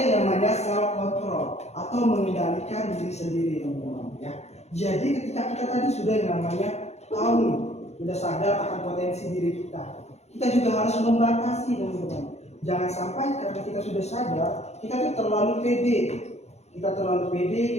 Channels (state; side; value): late; right; 0.32 ms